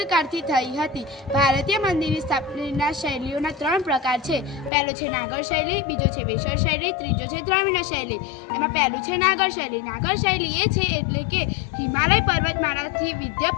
થઈ હતી. ભારતીય મંદિરની સ્થાપનાના શૈલીઓના 3 પ્રકાર છે. પહેલો છે નાગર શૈલી, બીજો છે વેસર શૈલી, ત્રીજો છે દ્રવિડ શૈલી. એમાં પહેલું છે નાગર શૈલી. નાગર શૈલી એ છે એટલે કે હિમાલય પર્વતમાળાથી વિંધ્ય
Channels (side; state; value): right; drops out; at 4.7 s